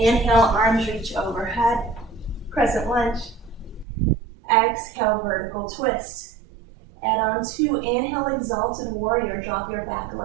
arms reach overhead, crescent lunge. Exhale, vertical twist. Add on two, inhale, exalted warrior. Drop your back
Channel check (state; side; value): drops out; left; at 3.9 s